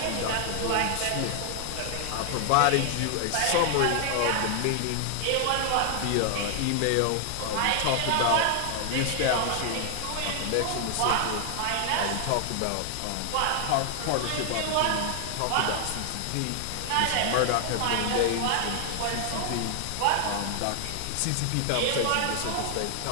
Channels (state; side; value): different; both; correlation 0.00